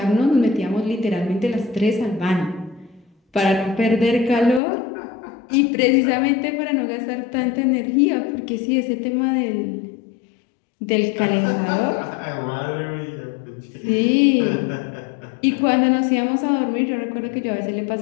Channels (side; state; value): right; drops out; at 4.6 s